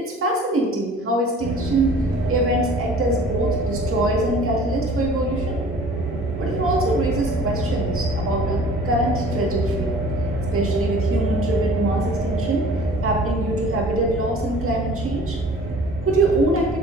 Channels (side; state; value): both; normal; correlation 0.48